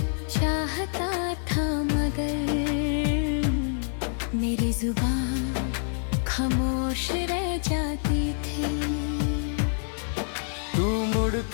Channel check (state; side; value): silent; right; digital silence